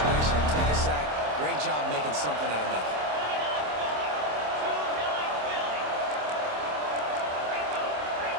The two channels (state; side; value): late; left; 27 ms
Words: and take a sack. Great job making something out of nothing.